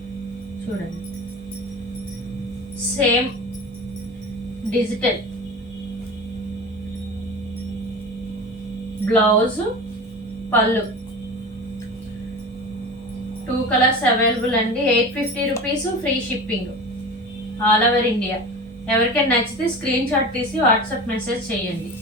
చూడండి, సేమ్ డిజిటల్ బ్లౌజ్, పళ్ళు. 2 కలర్స్ అవైలబుల్ అండి. 850 rupees, free shipping, all over India. ఎవరికైనా నచ్చితే స్క్రీన్ షాట్ తీసి వాట్సాప్ మెసేజ్ చేయండి.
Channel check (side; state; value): both; normal; correlation 0.32